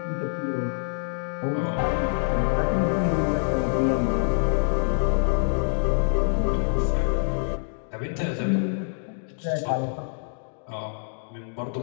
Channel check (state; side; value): silent; right; digital silence